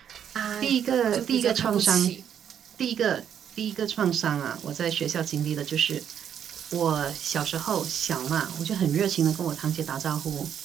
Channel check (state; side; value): quieter; left; 8.9 dB